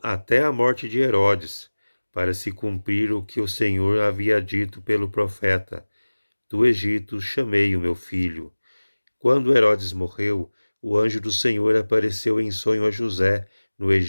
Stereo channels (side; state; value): both; inverted; correlation -1.00